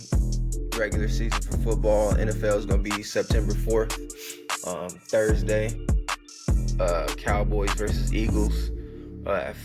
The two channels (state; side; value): identical; both; correlation 1.00